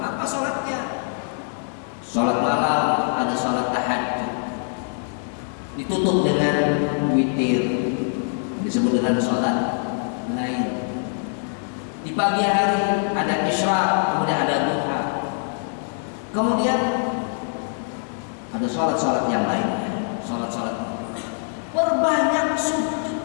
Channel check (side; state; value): right; silent; 60 dB below the other